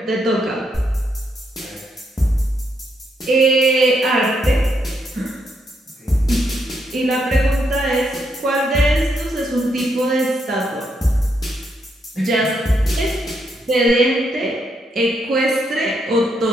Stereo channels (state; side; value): normal; both; correlation 0.78